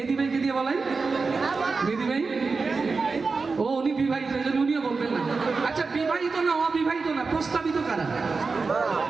ভাইকে দিয়ে বলাই। মেহেদী ভাই, ও উনি বিবাহিত, এই জন্য উনিও বলবেন না। আচ্ছা, বিবাহিত না অবিবাহিত না, প্রস্তাবিত কারা?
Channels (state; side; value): quieter; left; 4.4 dB